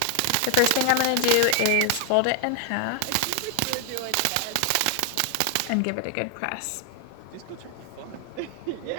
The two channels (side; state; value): both; different; correlation 0.00